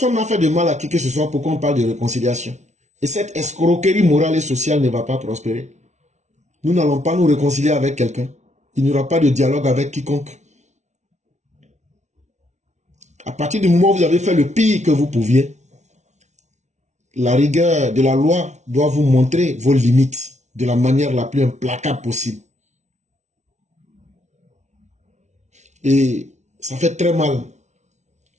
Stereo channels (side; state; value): left; late; 0.33 ms